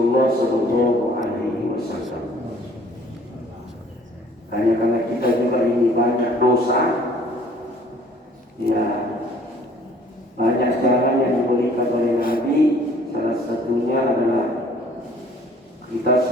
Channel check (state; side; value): normal; both; correlation 0.56